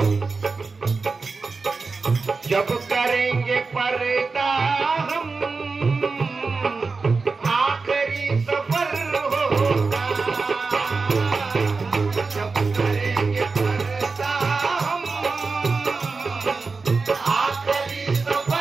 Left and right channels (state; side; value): quieter; left; 4.3 dB